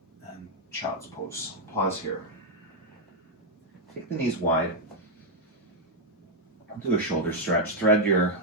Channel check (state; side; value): normal; both; correlation -0.02